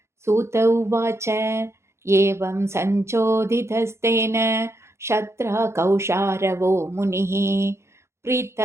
सूत उवाच एवं सञ्चोदितस्तेन शत्रा कौशारवो मुनिः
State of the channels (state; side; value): late; left; 0.13 ms